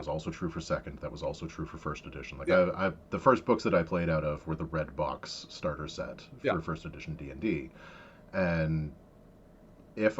also true for 2nd. That was also true for 1st edition. Like, the first books that I played out of were the red box starter set for 1st edition D&D. And if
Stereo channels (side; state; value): both; identical; correlation 1.00